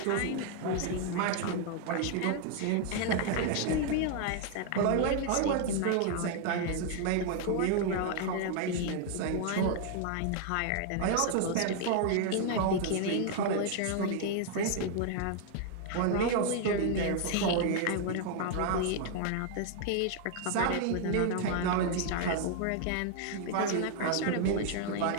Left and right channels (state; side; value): different; both; correlation 0.00